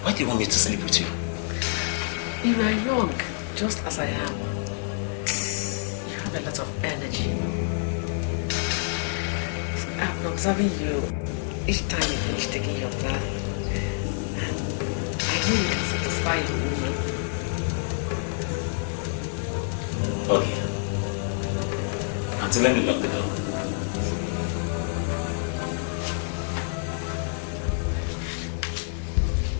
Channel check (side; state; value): right; silent; 56 dB below the other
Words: why do you want me to sleep with you? You are young, just as I am. You have a lot of energy. I've been observing you each time you finish taking your bath. And I know you can satisfy your woman. Okay. Auntie, let me lock the door.